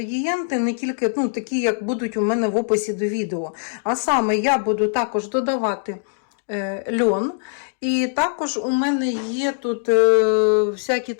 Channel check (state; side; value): silent; right; digital silence